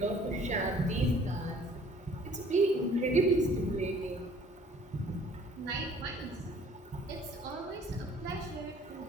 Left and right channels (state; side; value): normal; both; correlation 0.54